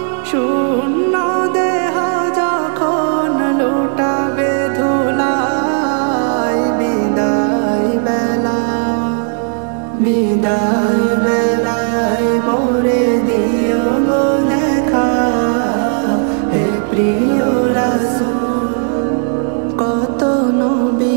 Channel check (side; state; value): left; silent; 58 dB below the other